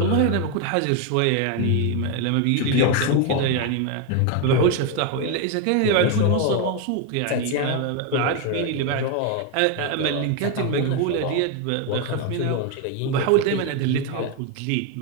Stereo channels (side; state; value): both; different; correlation 0.01